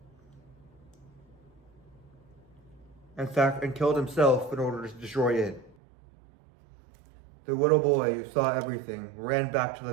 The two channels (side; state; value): left; drops out; at 5.8 s